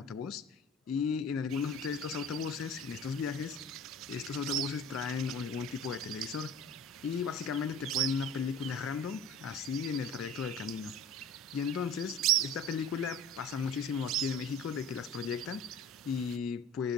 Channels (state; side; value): normal; both; correlation 0.41